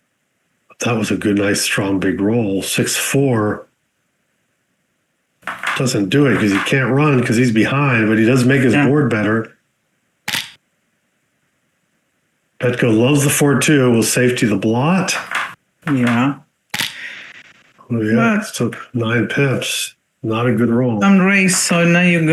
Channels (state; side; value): identical; both; correlation 1.00